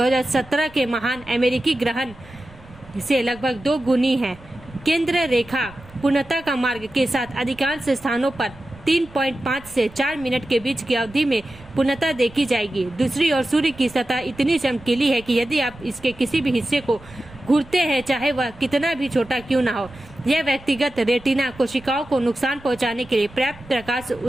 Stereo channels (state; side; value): noise; right; rumble, 22 dB below the sound